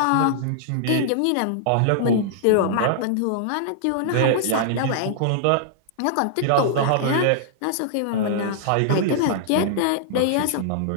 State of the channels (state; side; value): different; both; correlation -0.01